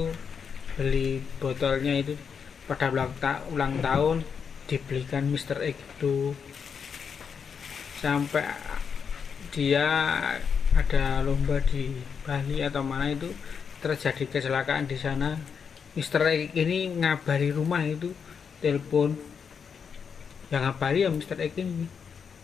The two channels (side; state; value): right; quieter; 6.5 dB